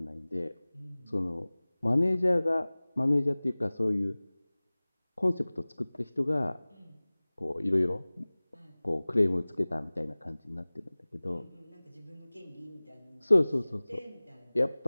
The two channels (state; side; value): inverted; both; correlation -1.00